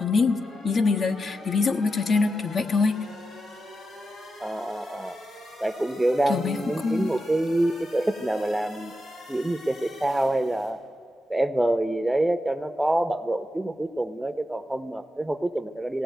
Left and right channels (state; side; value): normal; both; correlation 0.88